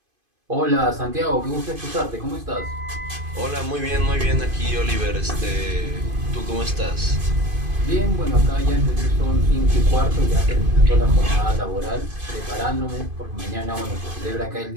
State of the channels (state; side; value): late; left; 2.5 ms